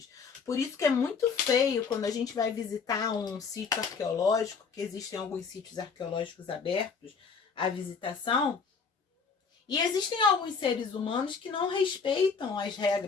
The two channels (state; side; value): quieter; right; 5.4 dB